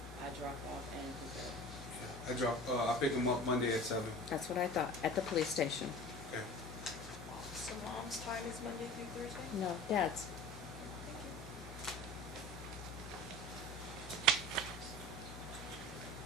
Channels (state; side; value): noise; left; hum, 12 dB below the sound